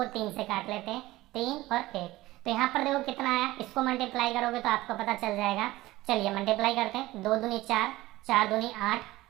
3 से काट लेते हैं, 3 और 1। तो यहाँ पर देखो कितना आया, इसको मल्टीप्लाई करोगे तो आपको पता चल जाएगा। चलिए मल्टीप्लाई करते हैं, 2 दूनी 4, 4 दूनी 8,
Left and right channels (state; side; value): quieter; left; 17.9 dB